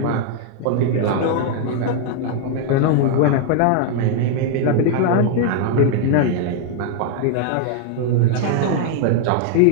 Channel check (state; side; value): different; both; correlation 0.00